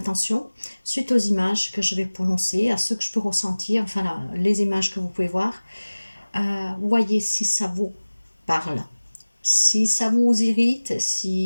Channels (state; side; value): inverted; both; correlation -1.00